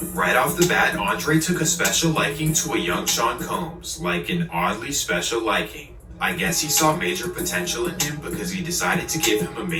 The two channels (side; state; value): both; identical; correlation 1.00